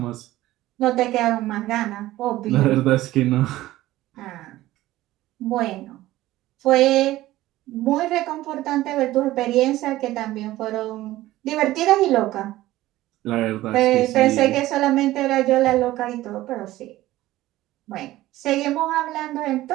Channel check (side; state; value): left; quieter; 16.1 dB